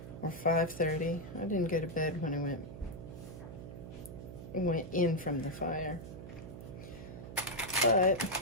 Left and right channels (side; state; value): right; noise; hum, 11 dB below the sound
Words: Or 5:30. I didn't go to bed when I went in from the fire. But